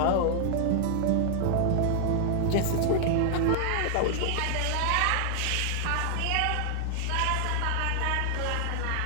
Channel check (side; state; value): both; different; correlation 0.00